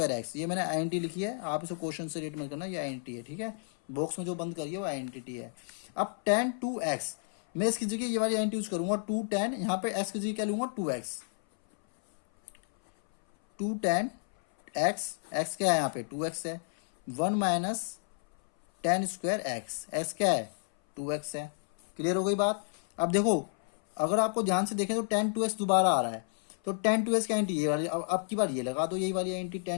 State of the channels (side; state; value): right; silent; 57 dB below the other